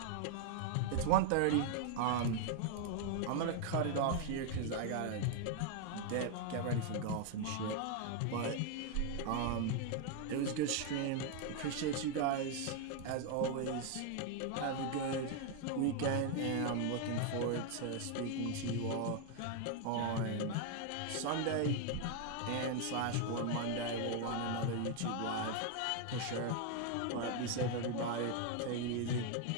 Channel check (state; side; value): different; both; correlation 0.00